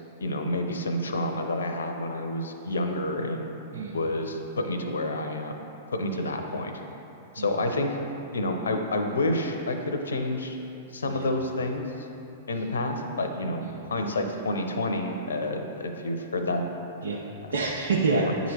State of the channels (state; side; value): inverted; both; correlation -0.52